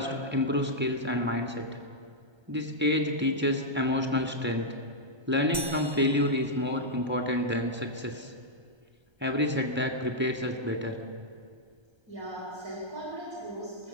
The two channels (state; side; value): late; left; 1.3 ms